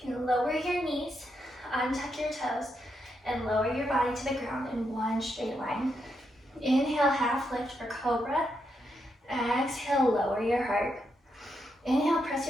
can lower your knees, untuck your toes, and lower your body to the ground in one straight line. Inhale, half lift for cobra. Exhale, lower your heart. Inhale, press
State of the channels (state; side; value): normal; both; correlation 0.82